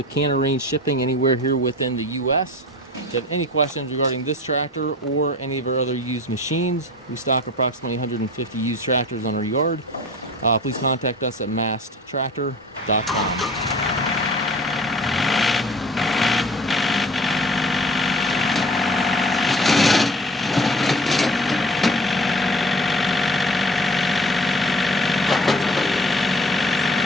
can arrange shipping anywhere here within the US. If you have any questions regarding this tractor or any of our other used machines, we stock approximately 150 used tractors on our yard. Please contact us at masttractor.com.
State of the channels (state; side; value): normal; both; correlation 0.44